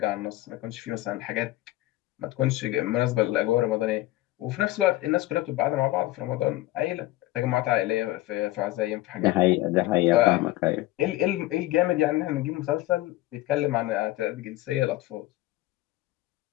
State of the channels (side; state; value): right; quieter; 17.1 dB